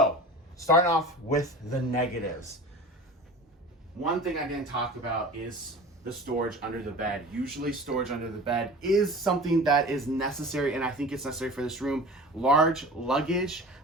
starting off with the negatives. One thing I didn't talk about is the storage under the bed. Usually storage under the bed is something that is necessary, and I think it's necessary for this room. Large luggage,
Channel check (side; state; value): both; normal; correlation 0.38